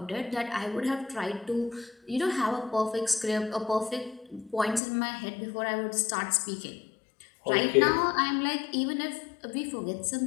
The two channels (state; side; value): drops out; right; at 4.8 s